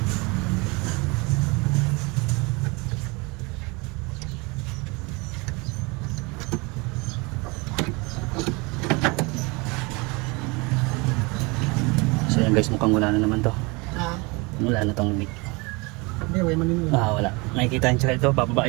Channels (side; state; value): left; quieter; 27.1 dB